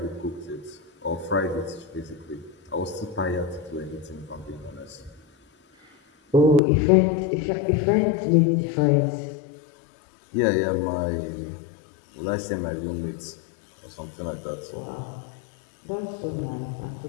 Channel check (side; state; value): right; drops out; at 6.6 s